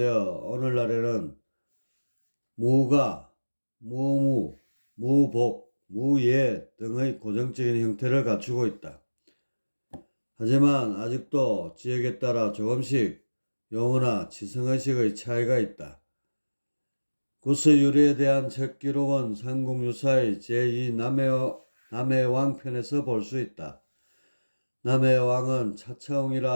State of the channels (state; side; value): inverted; both; correlation -1.00